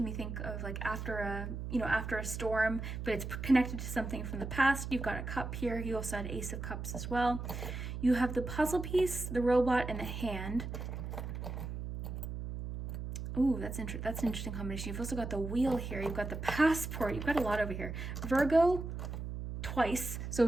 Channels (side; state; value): right; noise; hum, 6 dB below the sound